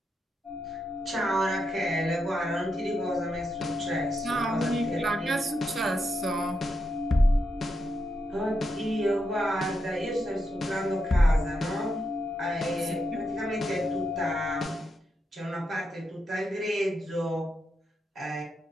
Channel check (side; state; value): both; normal; correlation 0.84